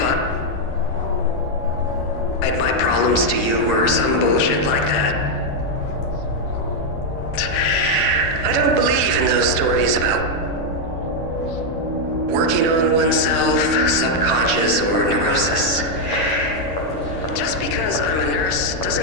my problems to you or some bullshit like that. I don't believe in those stories about working on oneself, subconscious, or neurosis. Just because I'm a nurse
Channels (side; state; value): right; late; 11 ms